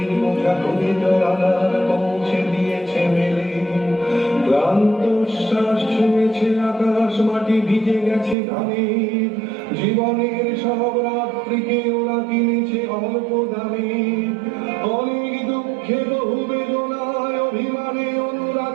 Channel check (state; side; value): drops out; left; at 8.3 s